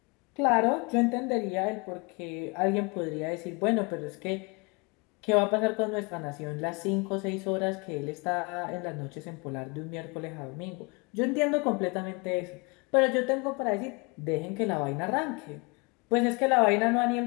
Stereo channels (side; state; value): right; quieter; 29.7 dB